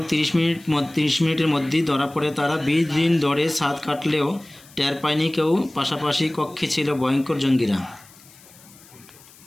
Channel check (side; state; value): left; noise; hiss, 24 dB below the sound